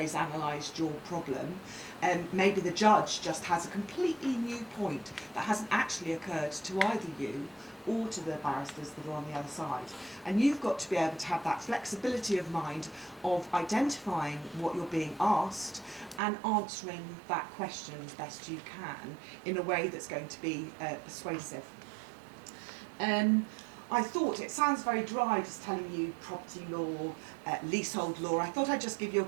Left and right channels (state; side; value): drops out; left; at 16.2 s